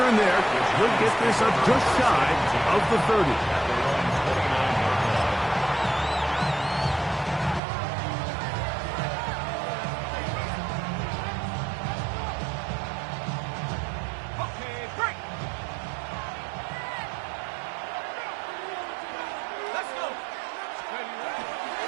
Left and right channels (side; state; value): left; drops out; at 7.6 s